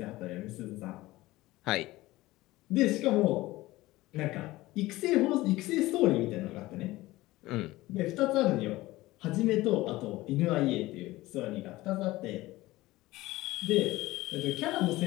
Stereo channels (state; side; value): quieter; right; 18.4 dB